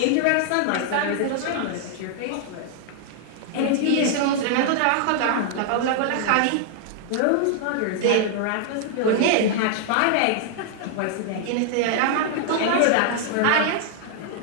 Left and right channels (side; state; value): both; different; correlation -0.01